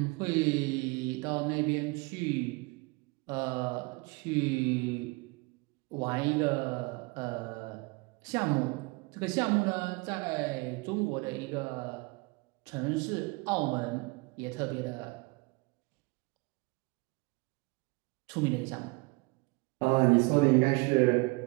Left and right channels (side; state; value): left; quieter; 27.2 dB